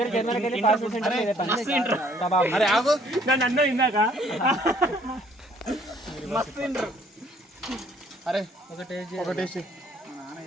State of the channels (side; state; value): both; normal; correlation 0.61